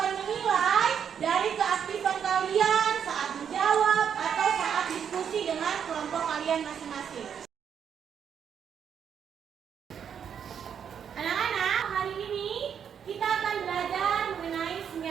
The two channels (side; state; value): left; quieter; 7.9 dB